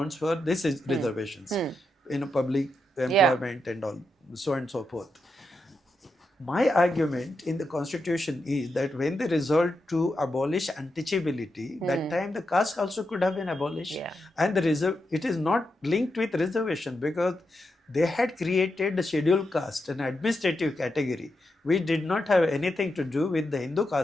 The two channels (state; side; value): normal; both; correlation 0.85